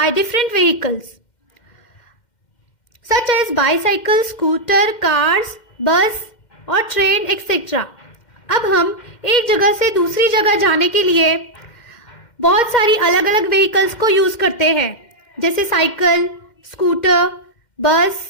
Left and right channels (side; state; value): right; late; 2.1 ms